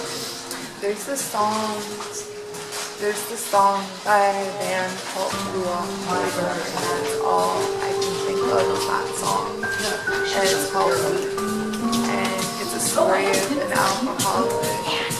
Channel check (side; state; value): both; identical; correlation 1.00